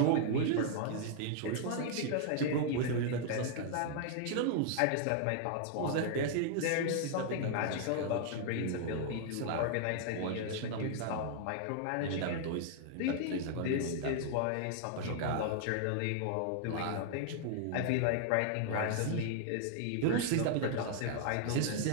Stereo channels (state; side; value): different; both; correlation 0.00